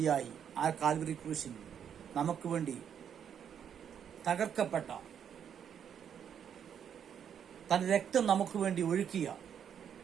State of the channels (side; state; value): left; quieter; 8.4 dB